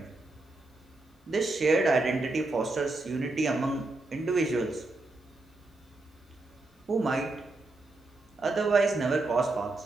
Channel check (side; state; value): left; quieter; 3.0 dB